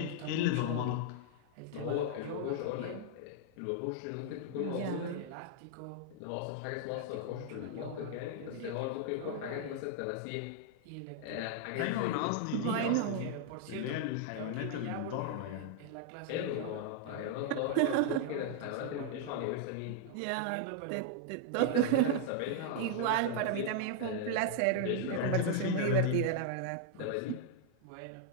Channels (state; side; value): different; both; correlation -0.01